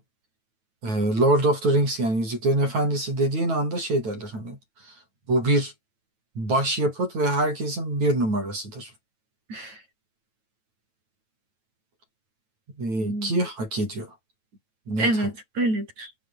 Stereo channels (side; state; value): left; late; 9.1 ms